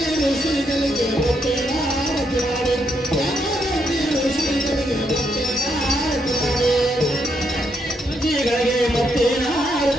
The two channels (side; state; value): both; normal; correlation 0.77